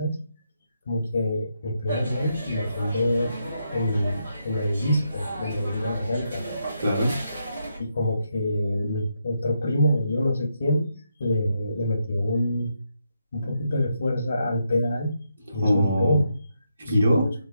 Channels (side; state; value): both; inverted; correlation -0.81